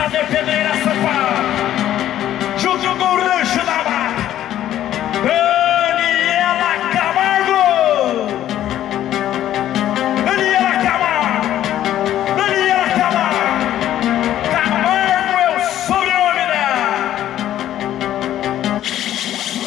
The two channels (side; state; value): right; quieter; 12.2 dB